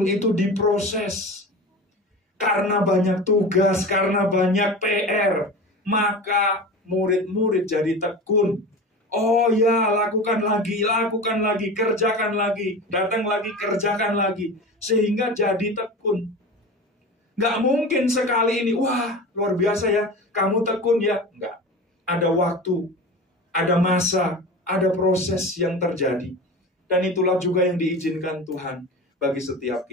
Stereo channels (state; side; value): normal; both; correlation 0.31